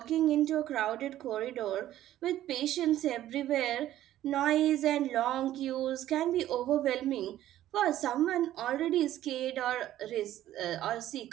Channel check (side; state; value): left; quieter; 13.2 dB